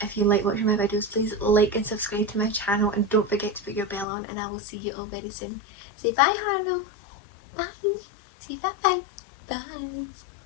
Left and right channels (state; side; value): drops out; right; at 4.0 s